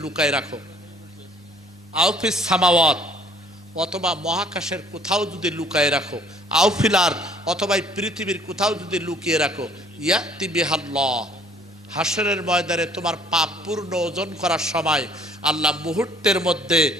লুকায় রাখো, আউফিস সামাওয়াত, অথবা মহাকাশের কোথাও যদি লুকায় রাখো, আউফিলার, অথবা পৃথিবীর কোথাও যদি লুকিয়ে রাখো, ইয়াতি বিহাল্লাহ, হাসরের ময়দানে তোমার পাপ পূর্ণ ওজন করার সময় আল্লাহ মুহূর্তের মধ্যে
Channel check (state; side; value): normal; both; correlation 0.57